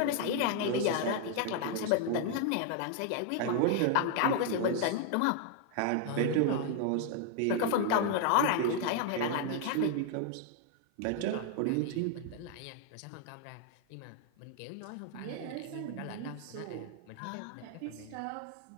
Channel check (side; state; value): both; different; correlation 0.00